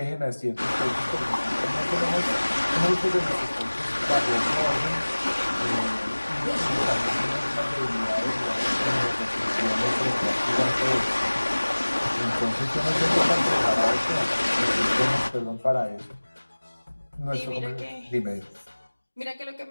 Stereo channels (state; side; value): inverted; both; correlation -1.00